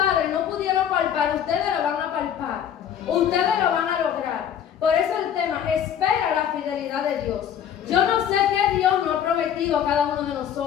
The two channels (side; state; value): right; quieter; 9.3 dB